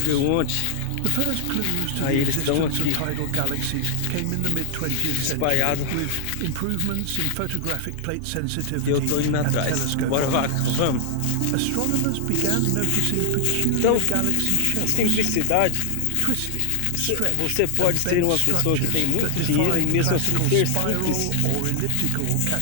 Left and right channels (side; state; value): both; different; correlation 0.00